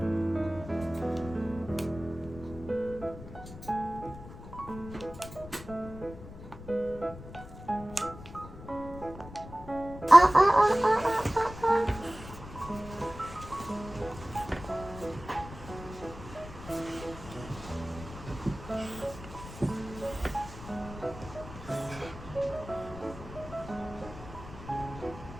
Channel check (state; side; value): noise; left; rumble, 14 dB below the sound